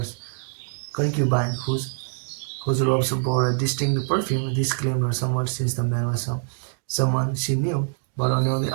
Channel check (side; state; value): left; silent; digital silence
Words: concubine, whose robes bore a distinct perfume. This claimed her somewhat since the man was someone she knew, but on the